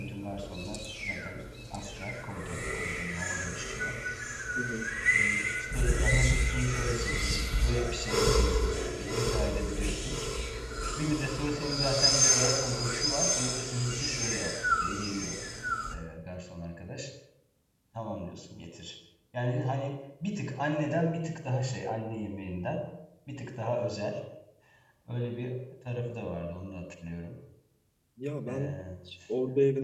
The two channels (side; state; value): both; identical; correlation 1.00